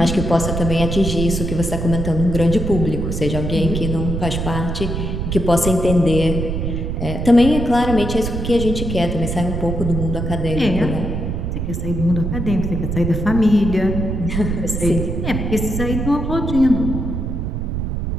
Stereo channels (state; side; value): noise; right; rumble, 3 dB below the sound